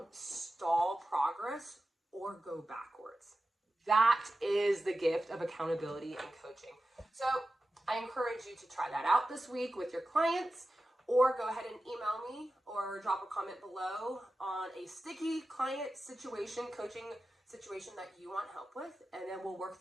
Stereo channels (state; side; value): normal; both; correlation 0.93